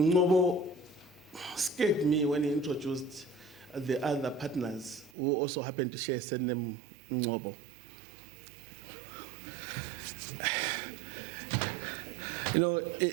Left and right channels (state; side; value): drops out; left; at 5.1 s